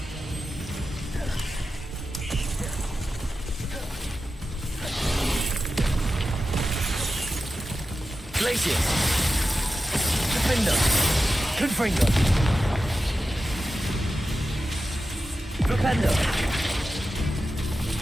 Glacius! Defender! Confringo! Flipendo!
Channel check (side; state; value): both; normal; correlation 0.91